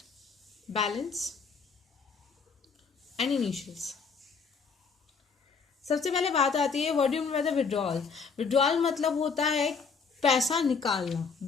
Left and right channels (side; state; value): right; quieter; 5.3 dB